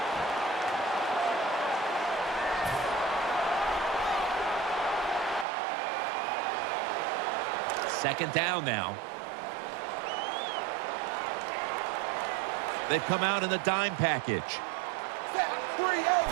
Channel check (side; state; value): left; drops out; at 5.5 s